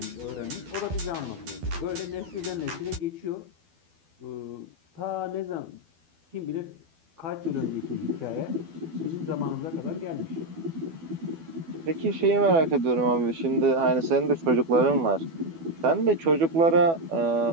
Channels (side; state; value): left; late; 12 ms